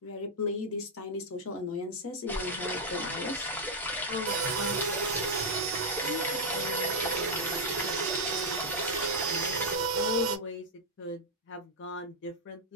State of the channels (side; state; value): both; normal; correlation -0.02